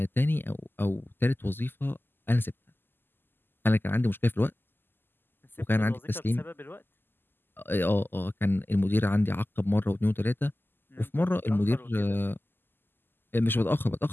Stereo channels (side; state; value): right; late; 0.096 ms